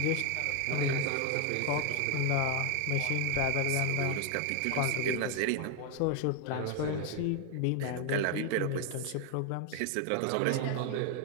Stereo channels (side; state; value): both; different; correlation 0.01